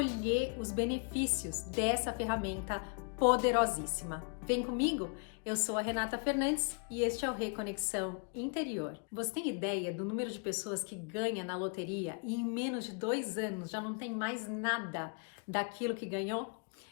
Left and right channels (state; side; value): quieter; right; 38.6 dB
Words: os benefícios dessa ferramenta poderosíssima. Vem comigo? Eu sou a Renata Fernandes e este é o Reconexão Interior. Você tem ideia do número de pessoas que ganha na loteria e em menos de 2 anos já não tem mais nada daquilo que ganhou?